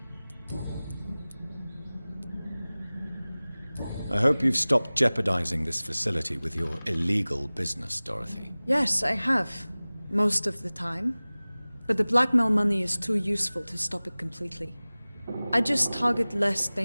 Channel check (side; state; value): both; inverted; correlation -0.99